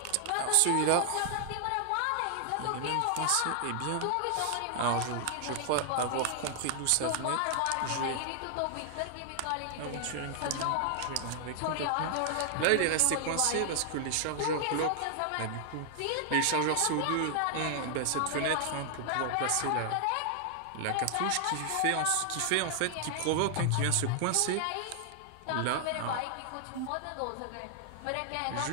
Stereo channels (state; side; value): different; both; correlation 0.00